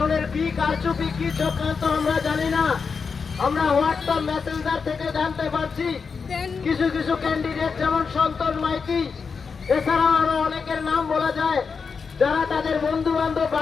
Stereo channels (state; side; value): quieter; right; 5.4 dB